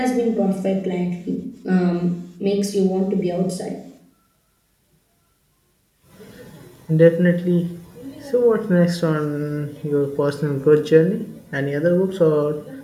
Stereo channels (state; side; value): identical; both; correlation 1.00